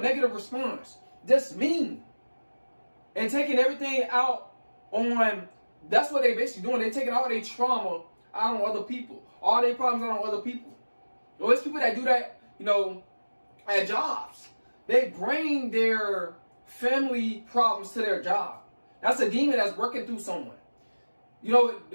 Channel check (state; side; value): inverted; both; correlation -1.00